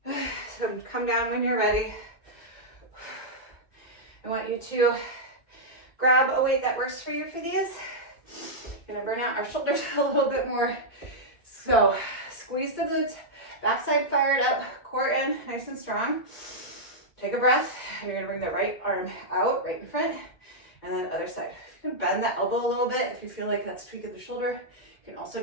So come down when you're ready. I want you to grab a weight that works for you for these. Going to burn out our shoulders a little bit more. So squeeze the glutes. Backside fired up, core in, nice and strong. Take a breath, and you're gonna bring the right arm out, right in front, and then other side. You can bend that elbow a little bit if you feel like that's tweaking the shoulder. You can also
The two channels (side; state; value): right; late; 2.2 ms